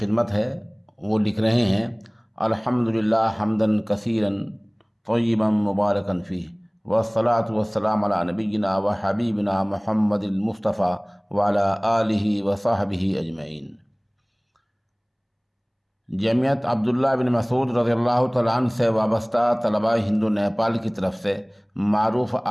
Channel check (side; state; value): both; identical; correlation 1.00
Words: ہے۔ وہ لکھ رہے ہیں: الحمدللہ حمدن کثیرن طیبا مبارکن فیہ، والصلاة والسلام علی نبینا و حبیبنا محمد المصطفیٰ وعلی آلہ و صحبہ اجمعین۔ جمعیت عبداللہ بن مسعود رضی اللہ تعالیٰ عنہ سے وابستہ طلبہ ہندو نیپال کی طرف سے معروف